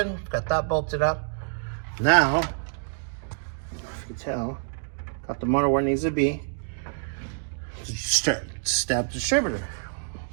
got that bolted up. Now, if you can tell, got the motor where it needs to be. Stab distributor.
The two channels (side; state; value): left; silent; digital silence